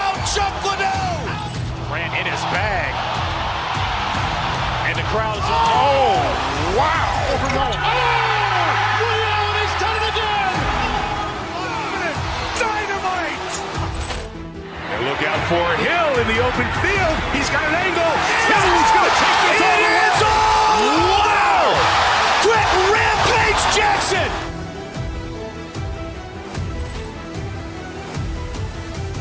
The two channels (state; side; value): identical; both; correlation 1.00